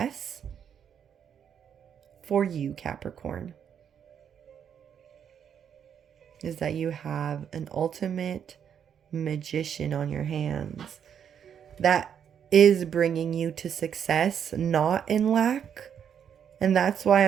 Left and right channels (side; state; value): left; quieter; 8.3 dB